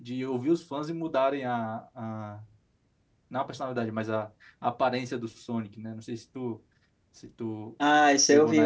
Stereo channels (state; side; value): identical; both; correlation 1.00